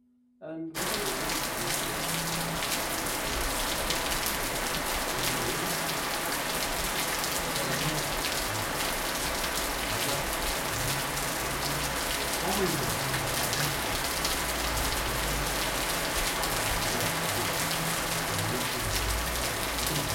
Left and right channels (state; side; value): identical; both; correlation 1.00